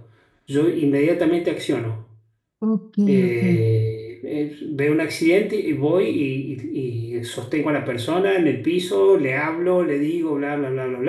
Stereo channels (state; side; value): identical; both; correlation 1.00